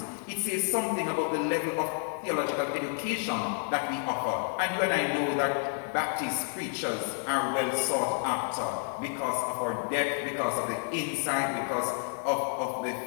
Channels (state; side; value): silent; right; 58 dB below the other